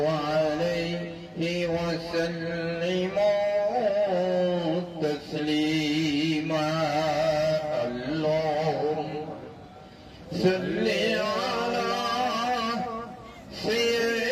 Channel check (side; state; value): both; identical; correlation 1.00